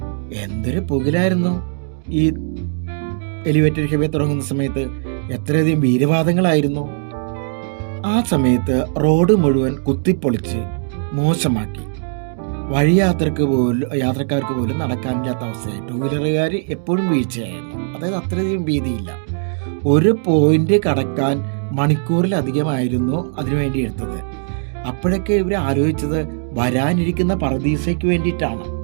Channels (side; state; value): left; silent; digital silence